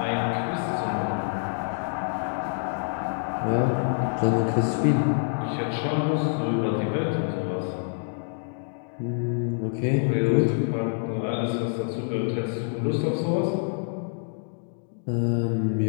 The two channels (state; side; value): silent; right; digital silence